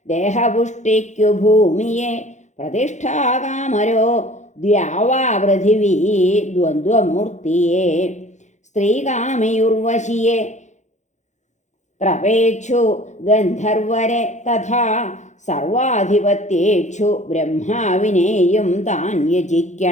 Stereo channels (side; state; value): right; late; 0.34 ms